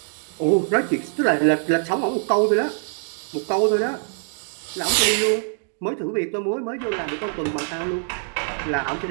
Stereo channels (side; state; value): left; silent; digital silence